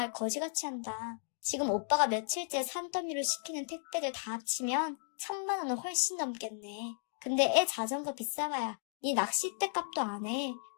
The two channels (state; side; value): silent; right; digital silence